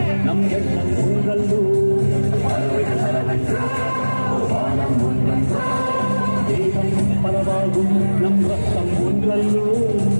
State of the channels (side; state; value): both; inverted; correlation -1.00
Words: நம் எண்ணம் உங்களோ தேகம் பலவாகும் நம் ரத்தம் ஒன்றல்லோ